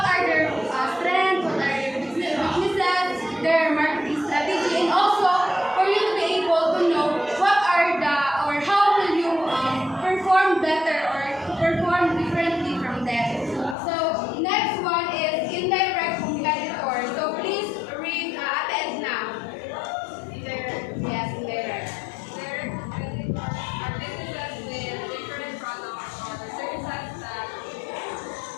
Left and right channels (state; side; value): drops out; right; at 13.8 s